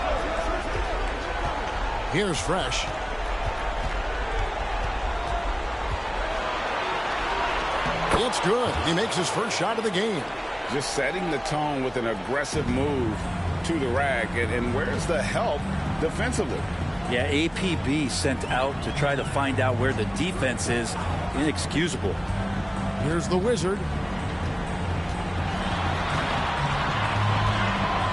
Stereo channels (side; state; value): both; identical; correlation 1.00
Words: Here's Fresh. It's good. He makes his first shot of the game. Just setting the tone with an aggressive move to the rack. And where's the help defensively? Yeah, APB sent out to try to find out where the defense is. Inexcusable. Here's the Wizard.